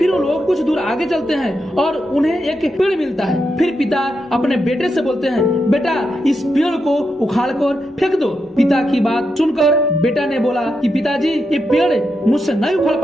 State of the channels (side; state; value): both; normal; correlation 0.85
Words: वो लोग कुछ दूर आगे चलते हैं और उन्हें एक पेड़ मिलता है। फिर पिता अपने बेटे से बोलते हैं, बेटा इस पेड़ को उखाड़ कर फेंक दो। पिता की बात सुनकर बेटा ने बोला कि पिताजी ये पेड़ मुझसे नहीं उखाड़